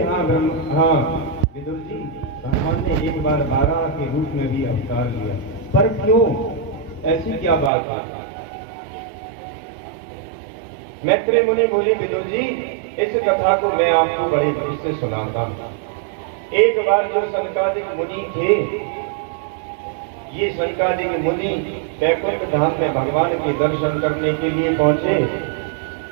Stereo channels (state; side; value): drops out; left; at 7.7 s